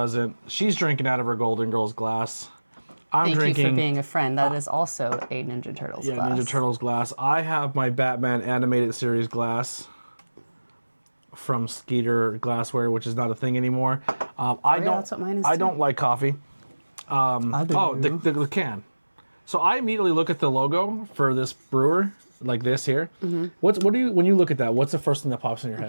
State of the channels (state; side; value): inverted; both; correlation -1.00